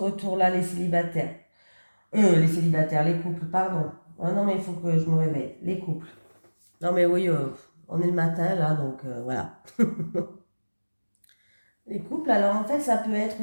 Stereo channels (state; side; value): inverted; both; correlation -1.00